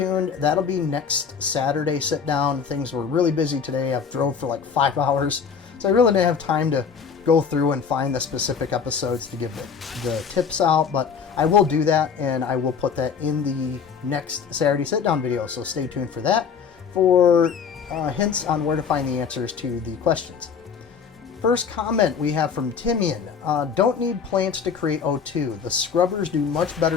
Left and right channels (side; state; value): right; quieter; 6.3 dB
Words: That'll be next Saturday sit down. Things were really busy today. I've drove for like 5 hours, so I really didn't have time to go through and find the specific episodes to give the tips out, but I will do that, and I will put that in the next Saturday sit down video. So stay tuned for that for hints on where to find the answers to the questions. First comment we have from Timian. Don't need plants to create O2. The scrubbers do much